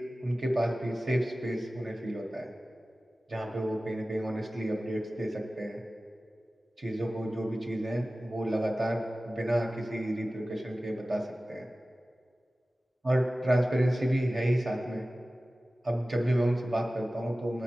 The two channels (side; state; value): both; normal; correlation 0.96